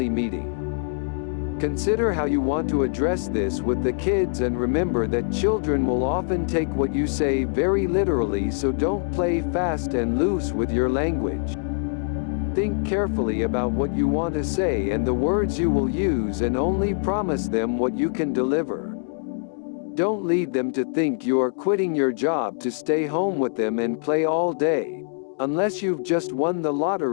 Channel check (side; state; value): right; silent; digital silence